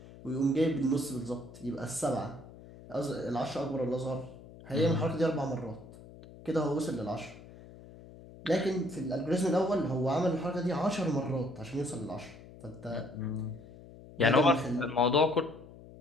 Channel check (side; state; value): left; noise; hum, 18 dB below the sound